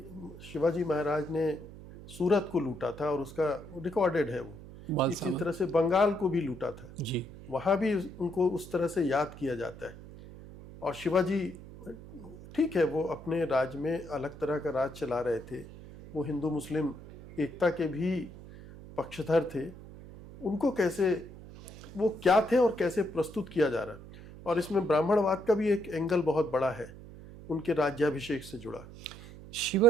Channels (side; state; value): right; noise; hum, 16 dB below the sound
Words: शिवाजी महाराज ने सूरत को लूटा था और उसका रिकॉर्डेड है वो। इसी तरह से बंगाल को भी लूटा था जी। वहाँ भी उनको उस तरह से याद किया जाता है। और शिवाजी ठीक है, वो अपने राज्य में अलग तरह का राज चला रहे थे, वो हिंदू मुस्लिम एकता के भी पक्षधर थे। उनको कैसे, वो क्या थे और कैसे प्रस्तुत किया जा रहा है, और इसमें ब्राह्मणवाद का भी एक एंगल बहुत बड़ा है उनके राज्याभिषेक से जुड़ा।